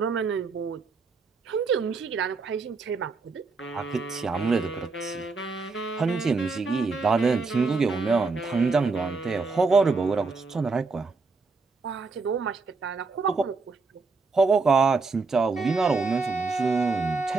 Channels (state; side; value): quieter; left; 4.2 dB